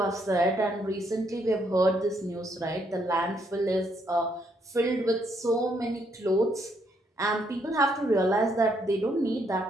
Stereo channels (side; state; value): both; normal; correlation 0.73